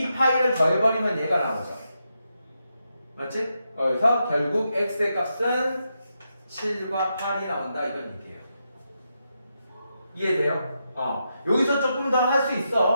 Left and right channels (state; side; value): inverted; both; correlation -0.84